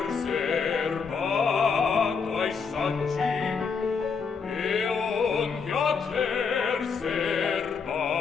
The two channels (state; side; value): quieter; right; 5.6 dB